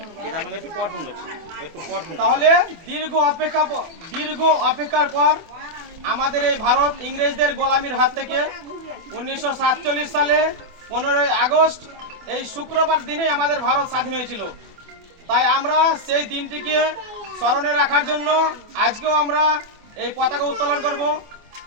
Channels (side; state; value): left; late; 24 ms